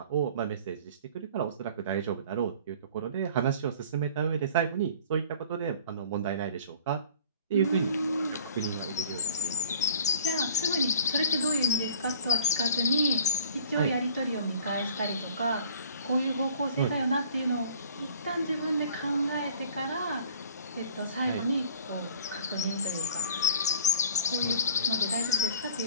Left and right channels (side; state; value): both; inverted; correlation -0.49